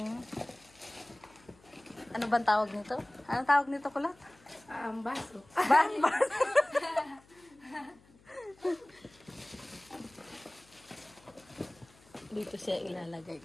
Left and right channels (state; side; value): noise; left; hum, 28 dB below the sound